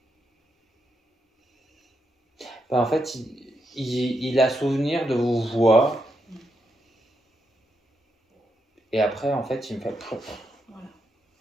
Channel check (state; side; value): normal; both; correlation 0.82